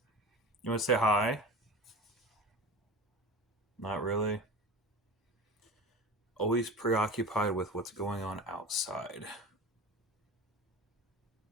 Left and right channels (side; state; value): both; normal; correlation 0.34